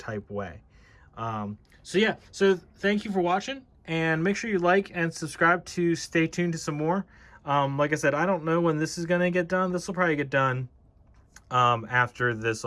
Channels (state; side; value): identical; both; correlation 1.00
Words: way. So yeah, so thank you for watching, and make sure you like and subscribe to stay tuned to some more. Like I said, I don't know when this is going to get done. This will probably get done after this